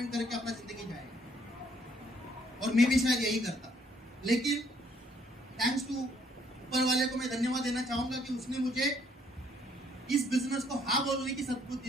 करके अपना जिंदगी जाएंगे। और मैं भी शायद यही करता, लेकिन थैंक्स टू ऊपर वाले को मैं धन्यवाद देना चाहूंगा कि उसने मुझे इस बिजनेस को हाँ बोलने की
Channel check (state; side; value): normal; both; correlation 0.66